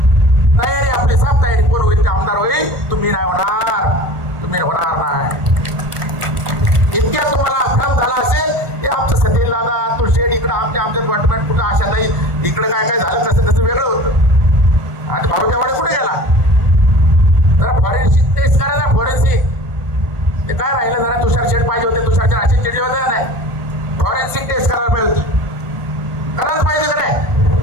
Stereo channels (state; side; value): late; left; 1.4 ms